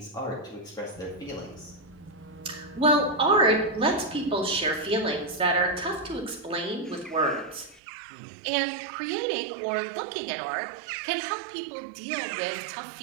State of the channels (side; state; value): left; drops out; at 7.8 s